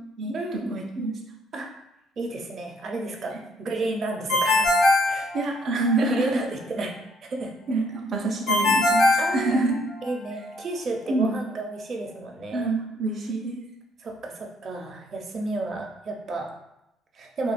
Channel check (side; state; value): both; normal; correlation 0.67